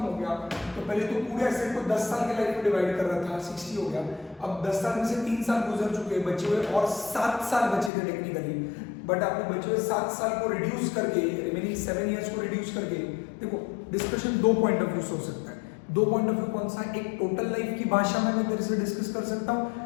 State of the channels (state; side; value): drops out; right; at 7.9 s